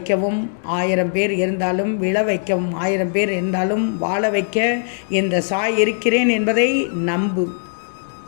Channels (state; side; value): silent; right; digital silence